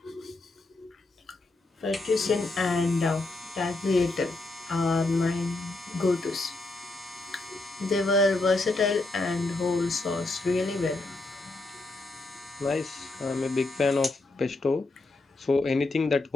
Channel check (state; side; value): quieter; right; 3.1 dB